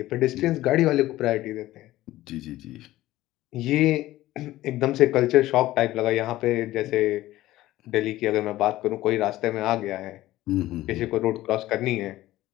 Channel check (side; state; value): right; quieter; 15.9 dB